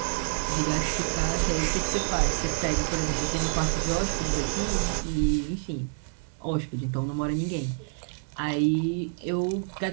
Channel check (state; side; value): silent; left; 60 dB below the other